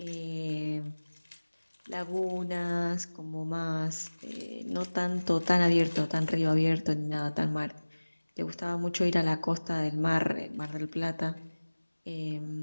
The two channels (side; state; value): both; inverted; correlation -1.00